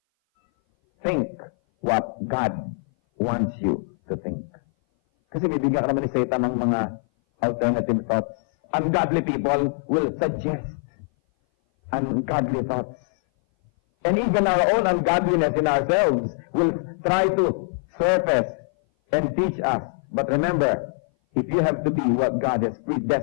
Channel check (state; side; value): silent; right; 58 dB below the other